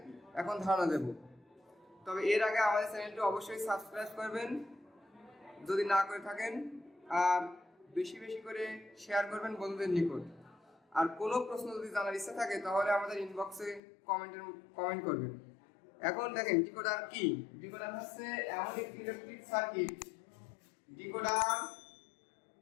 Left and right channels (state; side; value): drops out; right; at 13.8 s